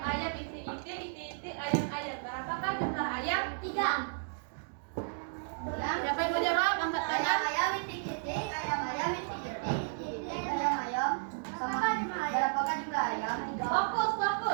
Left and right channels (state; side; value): silent; left; digital silence